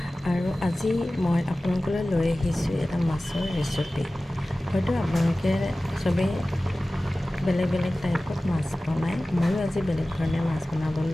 আৰু আজি মই আপোনালোকলৈ লৈ আহিছোঁ এটা মাছৰ ৰেচিপি। হয়তো আপোনালোকে চবেই বেলেগ বেলেগ টাইপত মাছ বনায়, ময়ো আজি বেলেগ ধৰণে মাছ বনাবলৈ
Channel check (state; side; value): normal; both; correlation 0.96